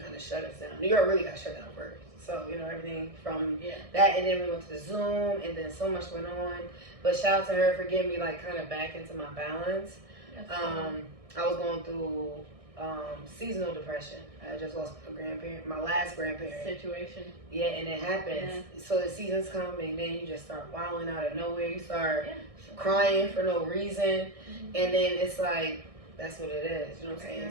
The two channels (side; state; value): left; late; 1.6 ms